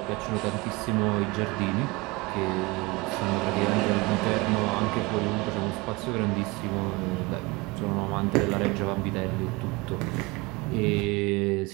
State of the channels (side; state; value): left; quieter; 24.0 dB